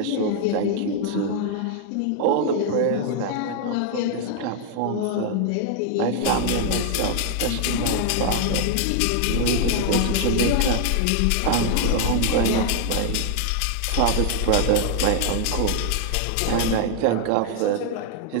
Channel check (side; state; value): both; different; correlation 0.00